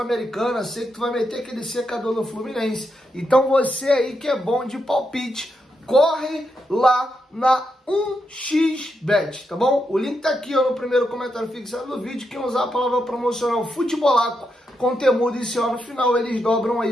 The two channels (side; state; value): both; normal; correlation 0.83